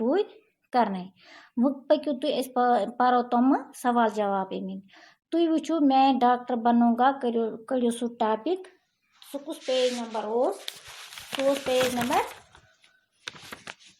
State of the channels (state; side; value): identical; both; correlation 1.00